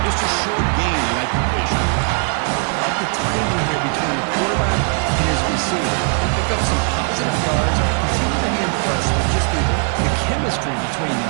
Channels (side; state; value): left; quieter; 39.8 dB